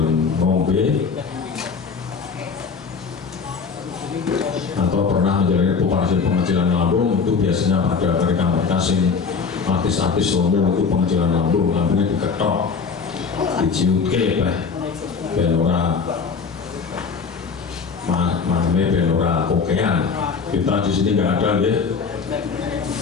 ngombe, atau pernah menjalani operasi pengecilan lambung. Itu biasanya pada mereka-mereka sing artis-artis umum itu pengecilan lambungnya diketok, diciutke ben ora ben ora kokean. Kita di sini nggak ada ya.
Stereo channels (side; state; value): right; quieter; 5.4 dB